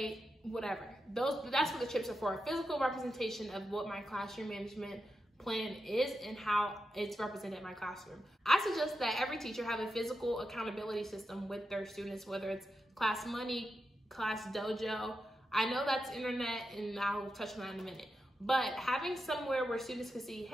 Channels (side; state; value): both; normal; correlation 0.88